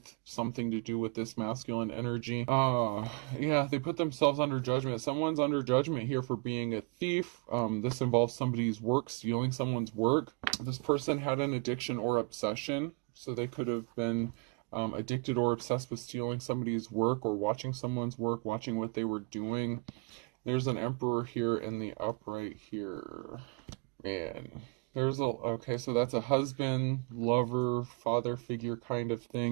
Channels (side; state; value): left; quieter; 32.1 dB